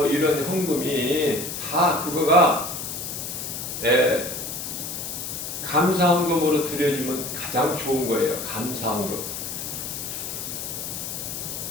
이런 헌금이 다 그거가 감사 헌금으로 드려주면 가장 좋은 거예요. 감사 헌금.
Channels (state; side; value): noise; left; hiss, 6 dB below the sound